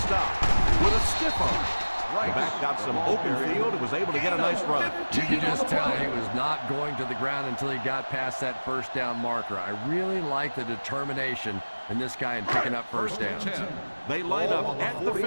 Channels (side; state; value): both; inverted; correlation -1.00